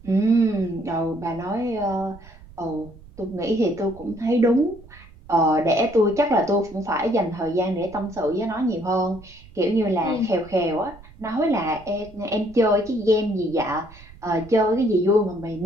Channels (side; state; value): right; noise; rumble, 21 dB below the sound